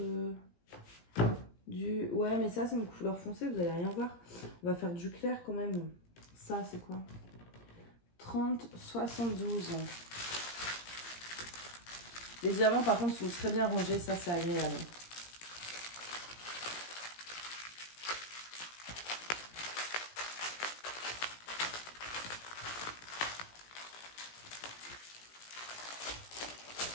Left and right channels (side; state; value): right; late; 17 ms